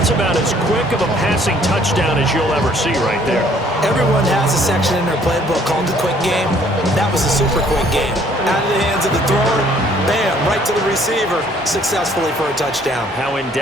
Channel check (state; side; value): normal; both; correlation 0.60